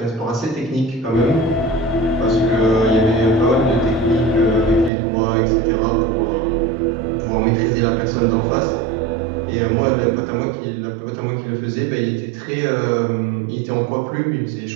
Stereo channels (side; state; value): left; drops out; at 4.9 s